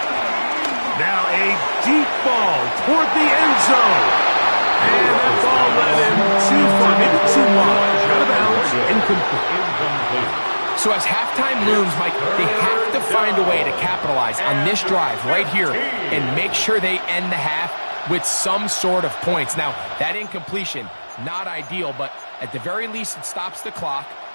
Now a deep ball toward the end zone. And that ball led him too far, maybe too wide. Out of bounds, incomplete. So as halftime looms, Mike, they have to find a way to capitalize on this drive right here and make sure they end the half with some sort of points. Now, that incompletion, not ideal, but at the very least it stops the clock.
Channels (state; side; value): inverted; both; correlation -1.00